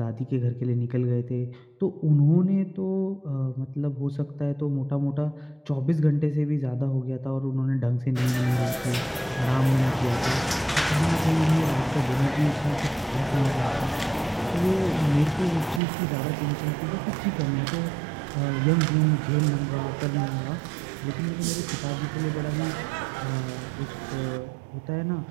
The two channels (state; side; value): drops out; left; at 15.8 s